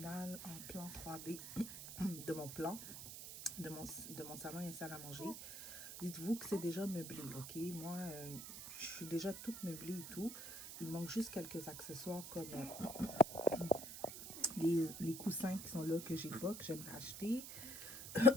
en plan 3D de mon plan, de mon salon et salle à manger. Dites-vous que c'est déjà meublé, ok? Moi, je suis déjà toute meublée et tout. Il manque juste quelques accessoires comme les coussins qui sont là que j'ai pas, que j'aimerais acheter.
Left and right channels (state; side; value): noise; right; hiss, 10 dB below the sound